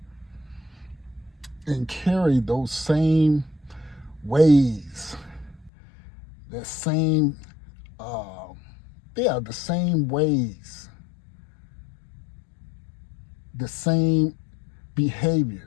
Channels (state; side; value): drops out; right; at 5.7 s